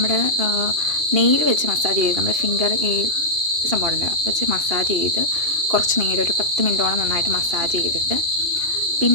നെയിൽ വെച്ച് മസാജ് ചെയ്ത് നമ്മുടെ ഫിംഗർ ഈ സംഭവമുണ്ട് വെച്ച് മസാജ് ചെയ്ത് കുറച്ച് നേരം ഒരു 10 മിനിറ്റോളം നന്നായിട്ട് മസാജ് ചെയ്തിട്ട്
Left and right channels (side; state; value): left; late; 2.8 ms